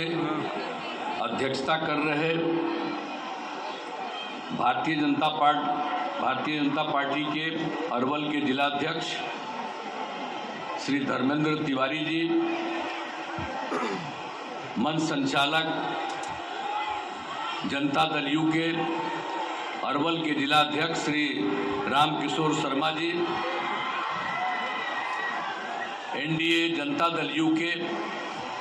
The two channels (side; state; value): both; identical; correlation 1.00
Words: अध्यक्षता कर रहे भारतीय जनता पार्टी के अरवल के जिलाध्यक्ष श्री धर्मेंद्र तिवारी जी, मंच संचालक जनता दल यू के अरवल के जिलाध्यक्ष श्री रामकिशोर शर्मा जी, एनडीए जनता दल यू के